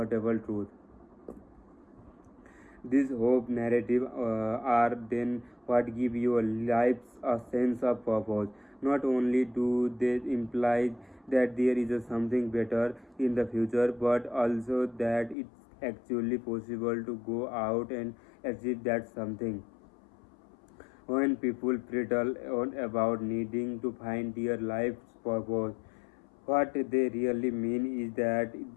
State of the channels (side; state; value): right; drops out; at 15.4 s